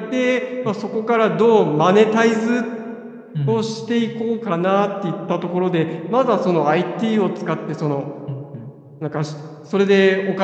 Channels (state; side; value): identical; both; correlation 1.00